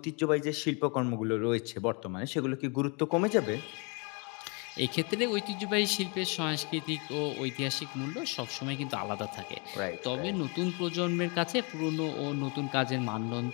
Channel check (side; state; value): right; quieter; 33.1 dB